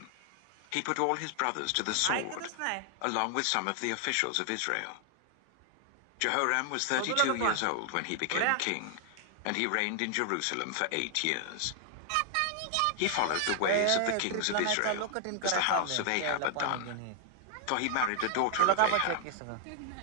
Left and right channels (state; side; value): different; both; correlation 0.00